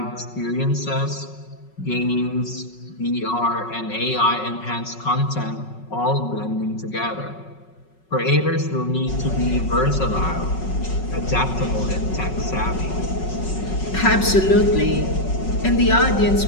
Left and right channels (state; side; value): late; right; 5.4 ms